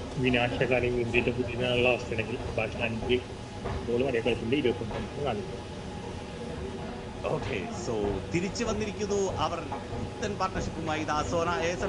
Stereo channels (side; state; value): both; identical; correlation 1.00